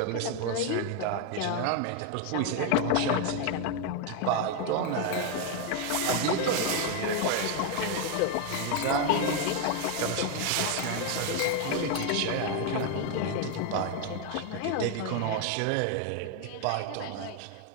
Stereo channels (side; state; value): both; different; correlation 0.01